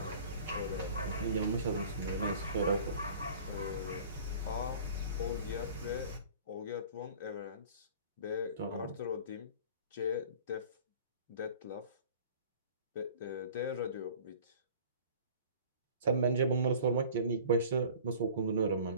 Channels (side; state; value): both; inverted; correlation -0.45